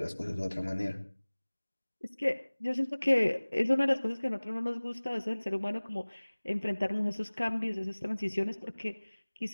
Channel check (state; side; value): inverted; both; correlation -1.00